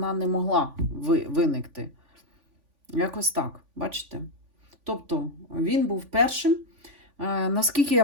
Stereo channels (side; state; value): left; late; 3.5 ms